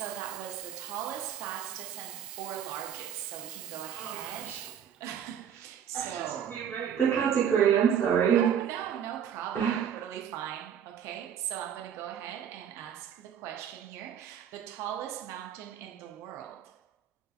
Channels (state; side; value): quieter; left; 8.7 dB